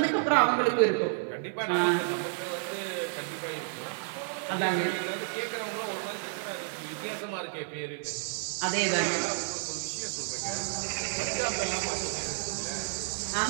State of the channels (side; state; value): left; silent; digital silence